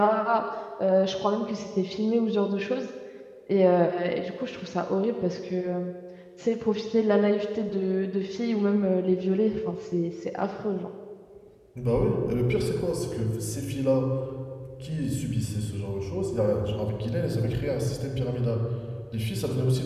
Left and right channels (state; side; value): identical; both; correlation 1.00